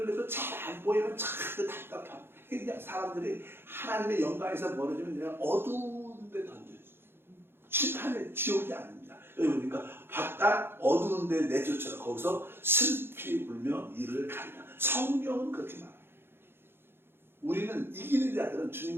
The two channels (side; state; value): left; late; 0.11 ms